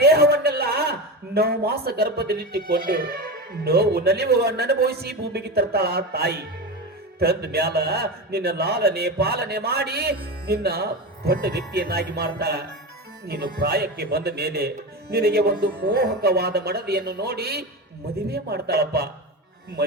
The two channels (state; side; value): normal; both; correlation 0.22